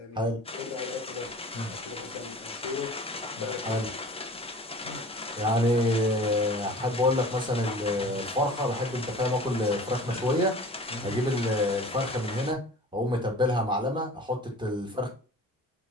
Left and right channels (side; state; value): both; normal; correlation 0.42